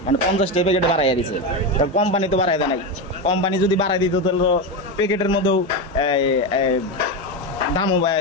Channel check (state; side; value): normal; both; correlation 0.14